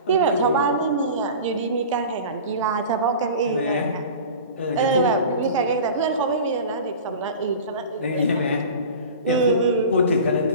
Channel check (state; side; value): inverted; both; correlation -0.36